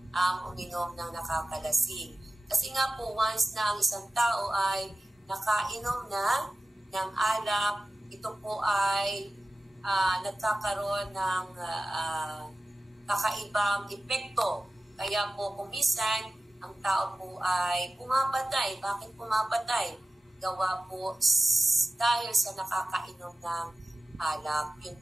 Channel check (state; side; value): normal; both; correlation 0.95